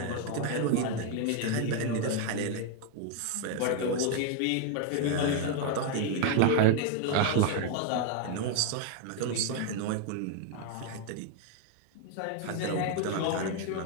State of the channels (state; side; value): different; both; correlation 0.00